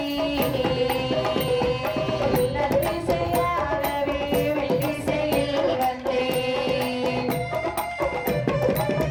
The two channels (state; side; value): identical; both; correlation 1.00